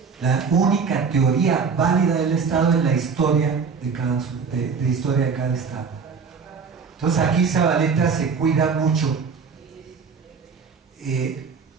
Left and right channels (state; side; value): quieter; left; 5.6 dB